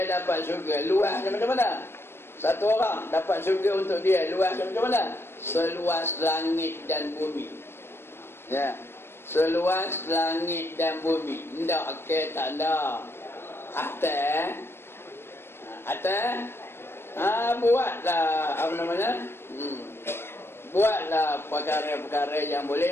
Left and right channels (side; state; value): right; late; 0.12 ms